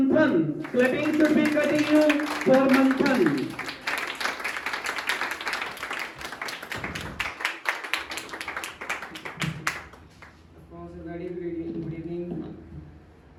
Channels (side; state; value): both; identical; correlation 1.00